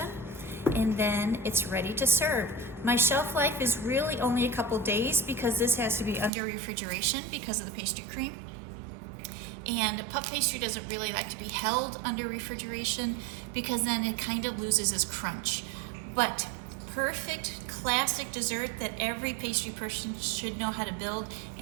and then it's ready to serve. My shelf life is really only a couple days because this has to be under refrigeration because of the pastry cream. And puff pastry doesn't really like to be held under refrigeration because then it kind of loses its crunch. But perfect classic dessert that every pastry person should know how to build.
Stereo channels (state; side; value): drops out; left; at 6.3 s